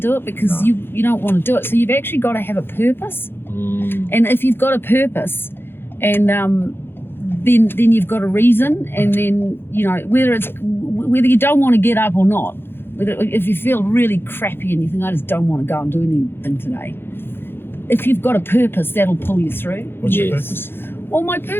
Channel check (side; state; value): right; late; 0.11 ms